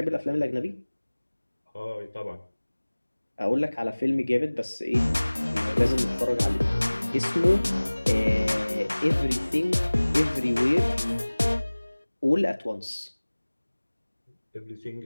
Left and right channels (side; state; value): both; inverted; correlation -1.00